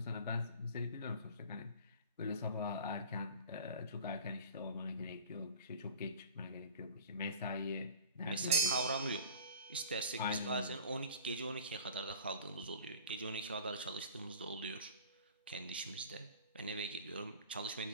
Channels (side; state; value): both; inverted; correlation -0.42